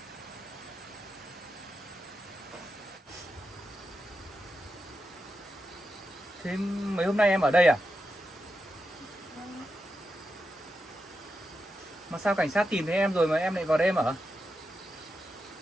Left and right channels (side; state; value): both; normal; correlation 0.88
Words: Thế mấy hôm nay em ở đây à? Mà sao cảnh sát tìm thấy em rồi mà em lại vào đây em ở?